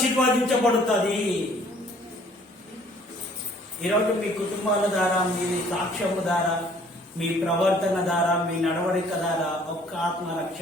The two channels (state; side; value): normal; both; correlation 0.57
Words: ఈరోజు మీ కుటుంబాల ద్వారా, మీ సాక్ష్యము ద్వారా, మీ ప్రవర్తన ద్వారా, మీ నడవడిక ద్వారా ఒక్క ఆత్మ